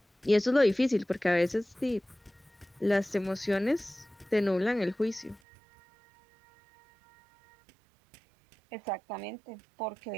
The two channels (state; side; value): drops out; left; at 5.4 s